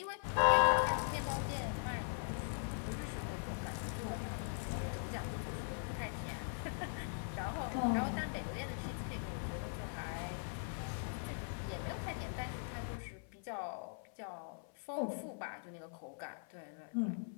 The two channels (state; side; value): silent; right; 51 dB below the other